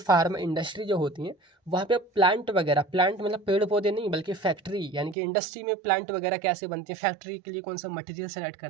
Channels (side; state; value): left; drops out; at 5.2 s